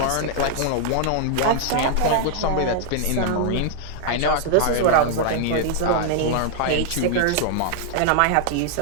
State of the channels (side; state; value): both; different; correlation -0.01